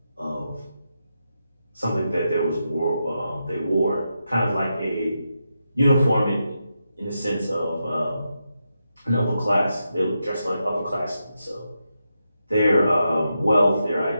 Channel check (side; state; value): both; inverted; correlation -0.86